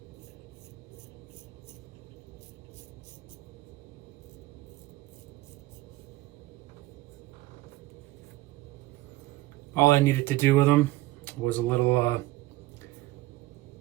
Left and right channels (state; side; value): quieter; left; 17.8 dB